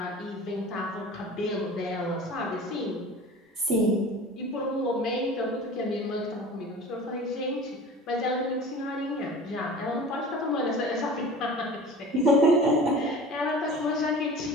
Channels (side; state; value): both; normal; correlation 0.39